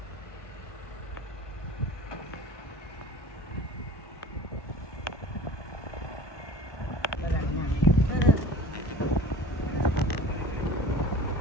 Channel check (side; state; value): right; late; 1.2 ms